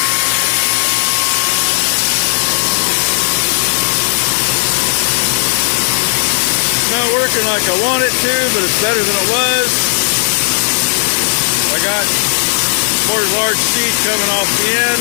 Not working like I want it to, but it's better than it was. I got more large seed coming off the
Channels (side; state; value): right; silent; digital silence